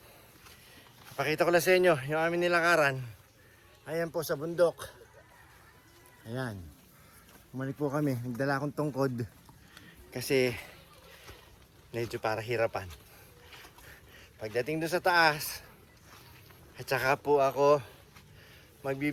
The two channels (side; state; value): both; identical; correlation 1.00